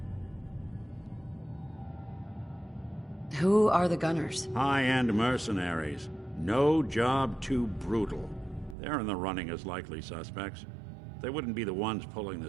Who are the Gunners? High-end mercenaries. No job too brutal. They're in the running as likely suspects. They wouldn't be the ones pulling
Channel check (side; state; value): left; drops out; at 8.8 s